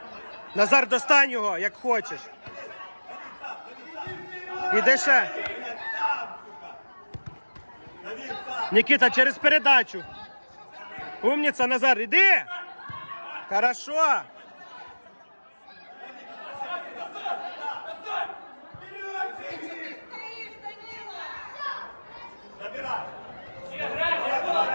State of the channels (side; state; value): both; inverted; correlation -1.00